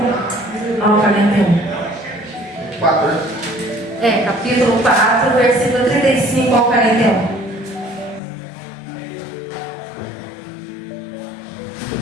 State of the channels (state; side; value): drops out; right; at 8.2 s